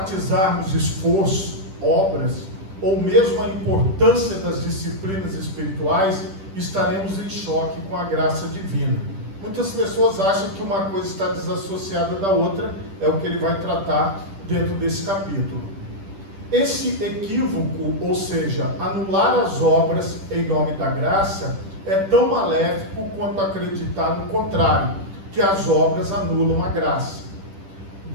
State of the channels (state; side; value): late; left; 10 ms